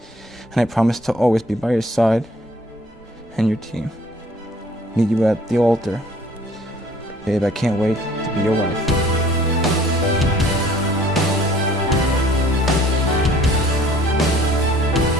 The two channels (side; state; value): both; normal; correlation 0.55